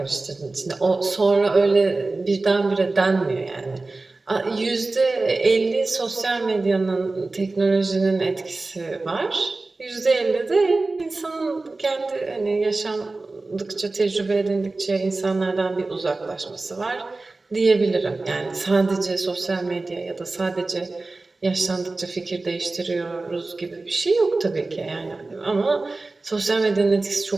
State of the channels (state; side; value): quieter; left; 3.4 dB